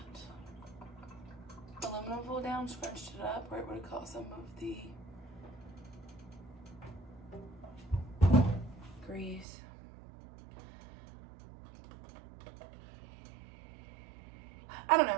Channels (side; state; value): left; drops out; at 9.5 s